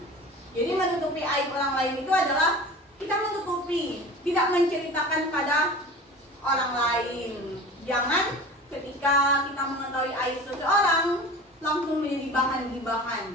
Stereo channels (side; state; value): both; normal; correlation 0.37